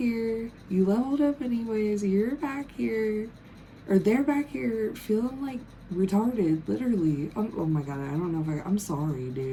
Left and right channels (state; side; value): identical; both; correlation 1.00